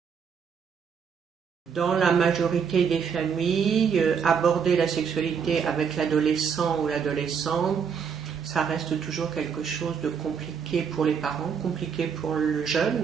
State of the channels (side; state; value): left; quieter; 6.8 dB